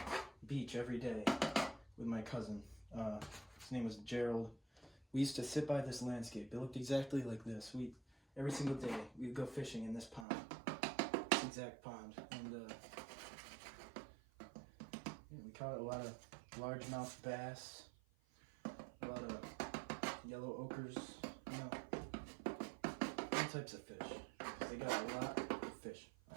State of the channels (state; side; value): drops out; left; at 10.2 s